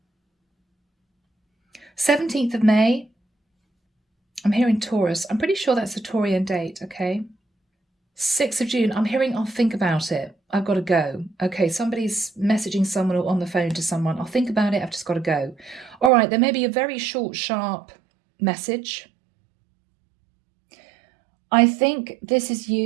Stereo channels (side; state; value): left; drops out; at 16.1 s